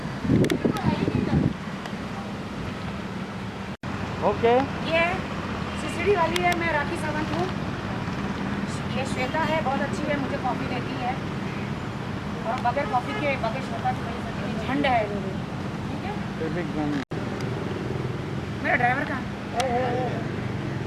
ओके, ये सिसड़ी वाली है, मैं राखी सावंत हूँ। ये श्वेता है, बहुत अच्छी है, मुझे कॉफ़ी देती है। और बगैर कॉफ़ी के बगैर श्वेता के नहीं सकती। झंड है मेरी, ठीक है? मेरा ड्राइवर कहाँ है?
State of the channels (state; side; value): identical; both; correlation 1.00